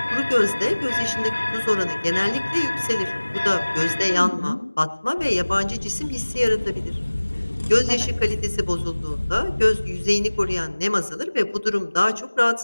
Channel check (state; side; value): inverted; both; correlation -1.00